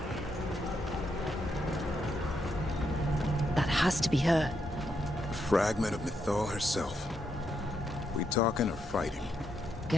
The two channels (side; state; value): both; normal; correlation 0.80